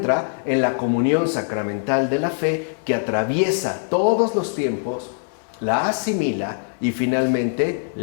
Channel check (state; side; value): silent; right; 61 dB below the other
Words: en la comunión sacramental de la fe que atraviesa todos los tiempos, la asimila y finalmente